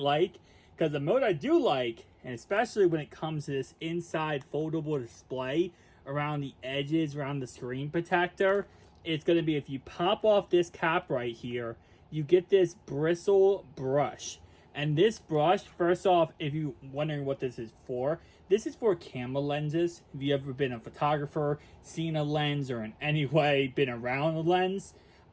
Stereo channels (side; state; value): both; identical; correlation 1.00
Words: because the mode I do like, and especially when it comes to this inside foldable display around the edges, around the screen protector, it's going to be if you pop off this cap right here, you get this bristle brush. And this brush, first off, if you're wondering what this is for camera lenses. If you've ever been a photographer, seen a lens, or in any way been around a lens,